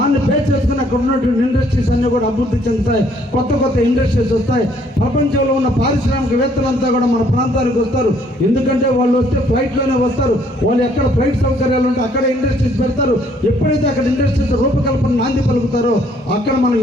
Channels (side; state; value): both; normal; correlation 0.64